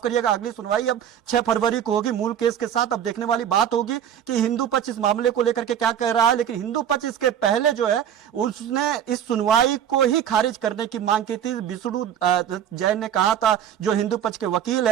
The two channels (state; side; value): quieter; left; 9.6 dB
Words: करिएगा, अगली सुनवाई अब 6 फरवरी को होगी मूल केस के साथ। अब देखने वाली बात होगी कि हिंदू पक्ष इस मामले को लेकर के क्या कह रहा है। लेकिन हिंदू पक्ष इसके पहले जो है उसने इस सुनवाई को ही खारिज करने की मांग की थी। विष्णु जैन ने कहा था, जो हिंदू पक्ष के वकील